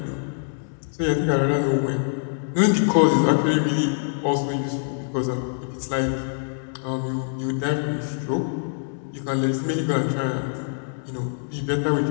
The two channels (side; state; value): right; silent; digital silence